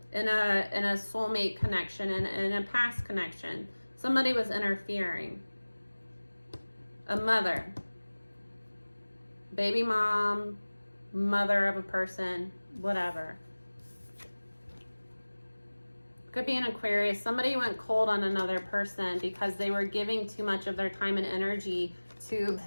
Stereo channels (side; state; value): both; inverted; correlation -1.00